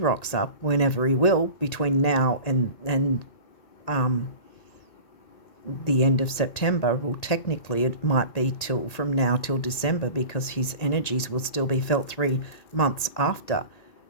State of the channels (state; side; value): late; right; 1.8 ms